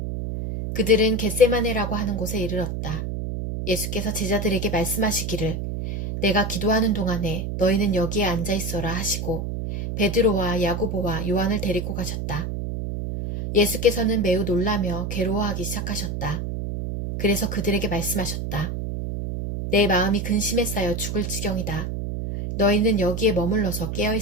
그들은 겟세마네라고 하는 곳에 이르렀다. 예수께서 제자들에게 말씀하시기를 내가 기도하는 동안에 너희는 여기에 앉아 있어라 하시고 베드로와 야고보와 요한을 데리고 가셨다. 예수께서는 매우 놀라며 괴로워하기 시작하셨다. 그래서 그들에게 말씀하셨다. 내 마음이 근심에 쌓여 죽을 지경이다. 너희는 여기에 머물러서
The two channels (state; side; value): noise; right; hum, 4 dB below the sound